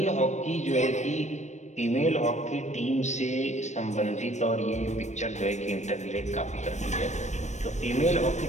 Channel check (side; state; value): right; late; 0.34 ms